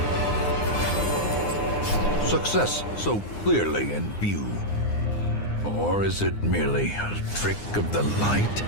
Success so clearly in view. Or is it merely a trick of the light?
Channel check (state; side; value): late; right; 9.7 ms